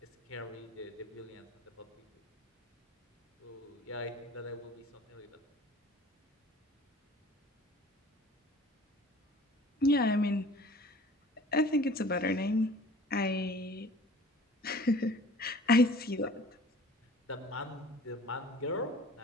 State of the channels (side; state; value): both; normal; correlation 0.48